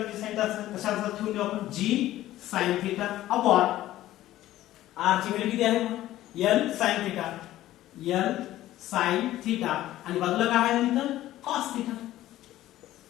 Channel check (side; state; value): right; quieter; 14.6 dB